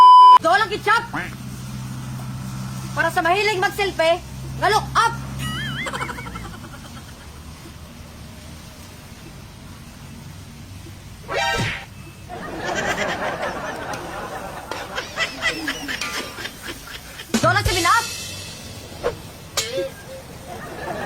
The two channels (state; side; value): identical; both; correlation 1.00